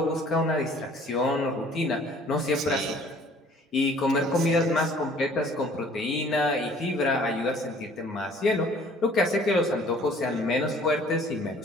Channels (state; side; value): normal; both; correlation 0.54